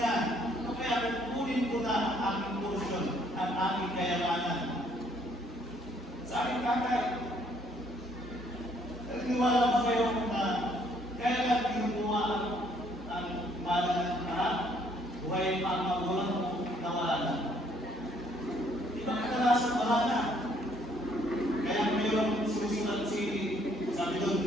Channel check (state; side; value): normal; both; correlation 0.65